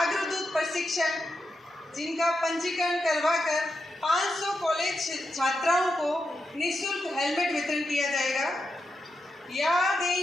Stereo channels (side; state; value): both; normal; correlation 0.86